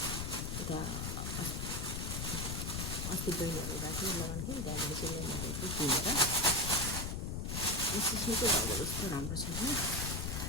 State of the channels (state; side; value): noise; left; rumble, 2 dB below the sound